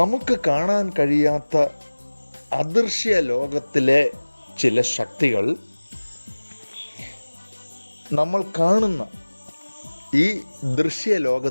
കാണാൻ കഴിയാത്ത അദൃശ്യ ലോകത്തിലെ ചില ശക്തികൾ നമ്മൾ കാണുന്ന ഈ ദൃശ്യ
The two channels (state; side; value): inverted; both; correlation -1.00